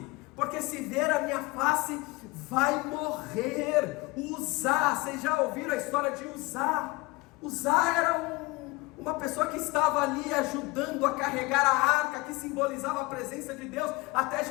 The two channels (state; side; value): quieter; right; 23.5 dB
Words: porque se ver a minha face, vai morrer. Uzá, vocês já ouviram a história de Uzá? Uzá era uma pessoa que estava ali ajudando a carregar a arca, que simbolizava a presença de Deus, até